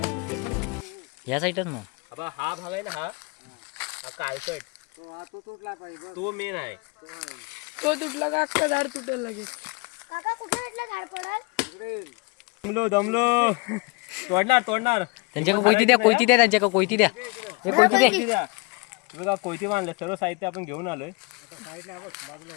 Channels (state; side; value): quieter; right; 28.9 dB